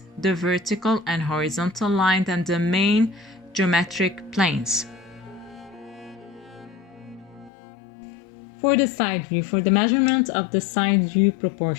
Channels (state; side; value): drops out; right; at 7.5 s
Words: the vertical and horizontal line, and the main geometric planes. For the side view, for the measurement of the side view